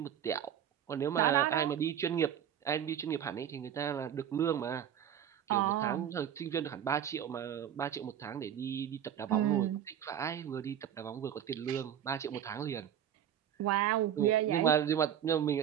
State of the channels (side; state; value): left; quieter; 9.7 dB